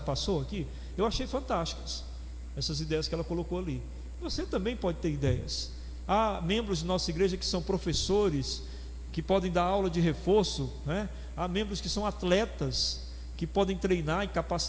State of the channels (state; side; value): identical; both; correlation 1.00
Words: passou aqui? Eu achei fantásticas essas ideias que ela colocou ali. Você também pode ter ideias. Há membros de nossa igreja que são professores, que podem dar aula de reforço, né? Há membros que são atletas, que podem treinar e